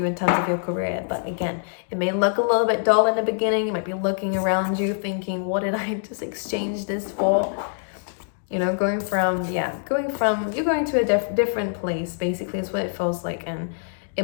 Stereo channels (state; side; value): silent; right; digital silence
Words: in terms of your career. But again, it may look a little bit dull in the beginning. You might be looking around you thinking, what did I just exchange this for? You know, you're going to a different place, basically, is what it feels like. And it